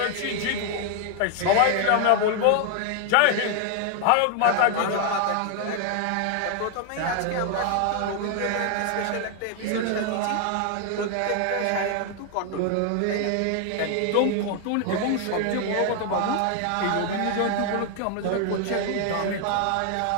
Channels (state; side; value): different; both; correlation 0.00